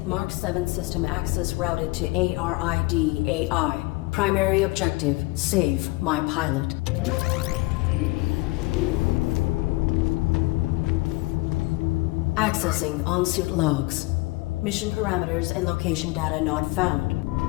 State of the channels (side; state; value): right; quieter; 22.5 dB